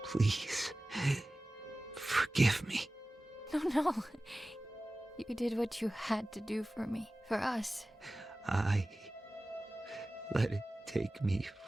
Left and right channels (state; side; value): normal; both; correlation 0.97